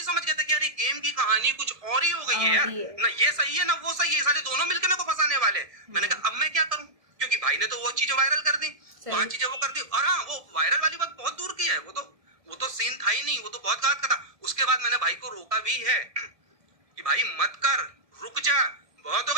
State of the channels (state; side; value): late; left; 1.7 ms